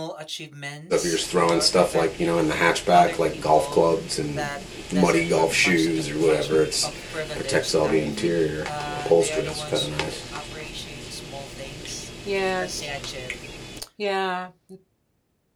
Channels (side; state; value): both; identical; correlation 1.00